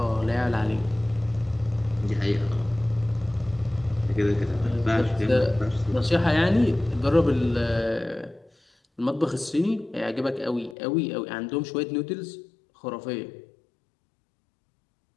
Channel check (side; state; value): right; drops out; at 10.8 s